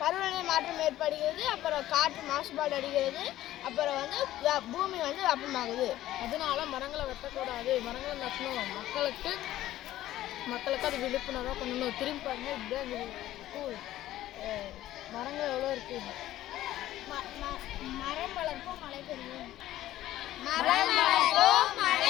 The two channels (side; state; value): right; quieter; 14.2 dB